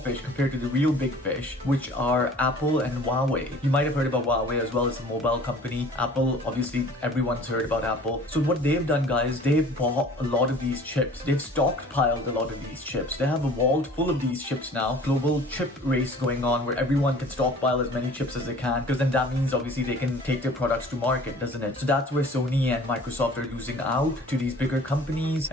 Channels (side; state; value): both; normal; correlation 0.48